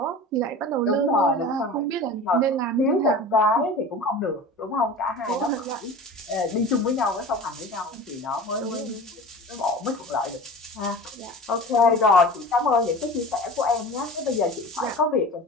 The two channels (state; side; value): normal; both; correlation 0.36